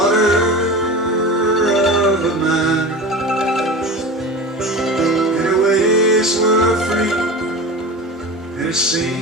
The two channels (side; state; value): both; normal; correlation 0.32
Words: of a miner. And her ways were free, and it